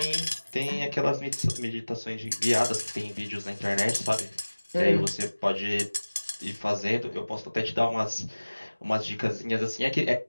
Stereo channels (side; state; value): both; inverted; correlation -1.00